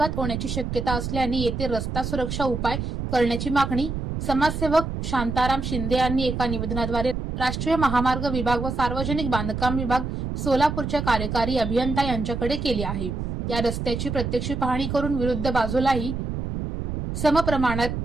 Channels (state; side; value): noise; right; rumble, 4 dB below the sound